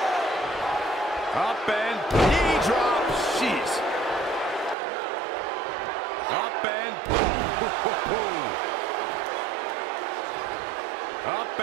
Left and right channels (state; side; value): drops out; left; at 4.8 s